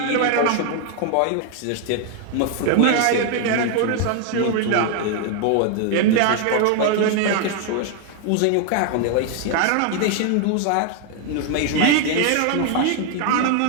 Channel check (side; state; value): both; different; correlation 0.01